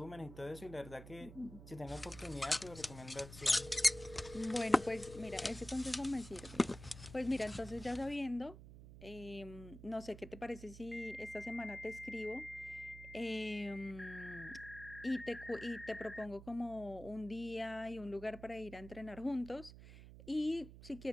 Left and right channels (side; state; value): right; noise; hum, 14 dB below the sound